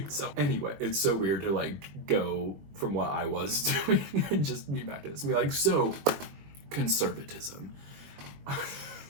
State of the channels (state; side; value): late; left; 21 ms